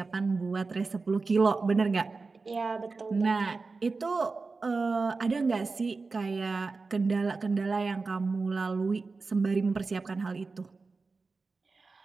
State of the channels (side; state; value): left; quieter; 4.1 dB